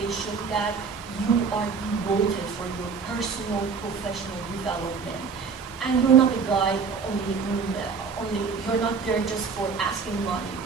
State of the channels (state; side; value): quieter; left; 5.4 dB